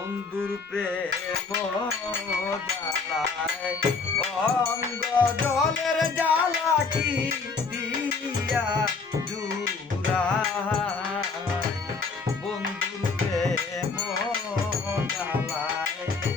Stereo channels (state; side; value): quieter; right; 4.6 dB